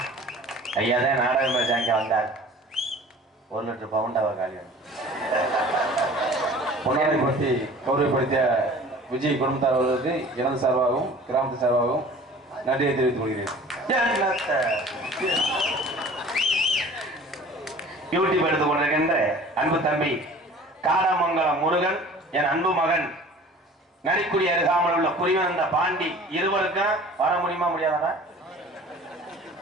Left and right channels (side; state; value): both; normal; correlation 0.45